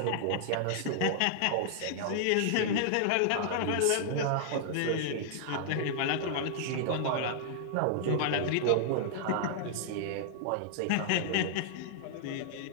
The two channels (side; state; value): both; different; correlation -0.01